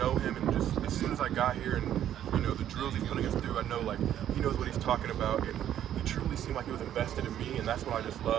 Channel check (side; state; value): left; quieter; 10.9 dB